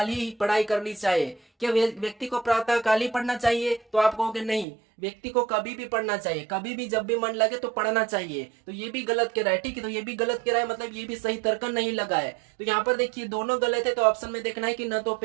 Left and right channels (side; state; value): left; drops out; at 4.7 s